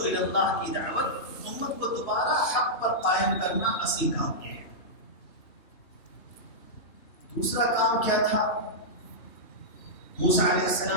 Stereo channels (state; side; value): late; right; 3.1 ms